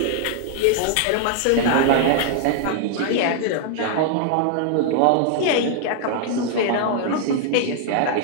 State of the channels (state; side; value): different; both; correlation 0.00